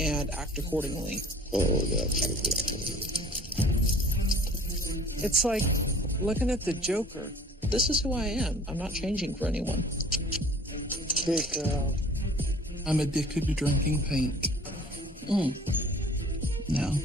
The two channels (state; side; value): normal; both; correlation 0.50